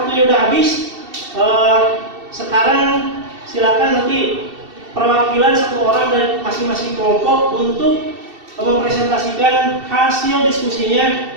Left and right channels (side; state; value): left; late; 2.7 ms